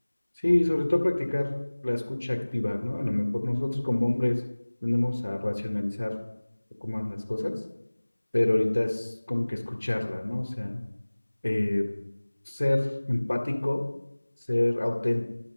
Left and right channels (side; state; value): both; inverted; correlation -1.00